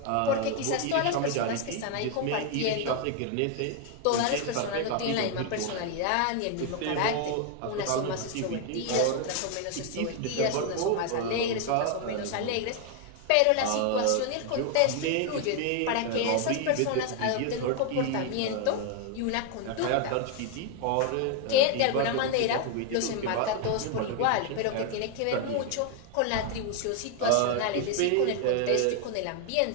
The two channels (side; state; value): both; different; correlation 0.01